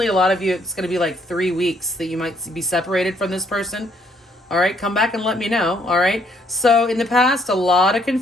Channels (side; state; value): both; normal; correlation 0.68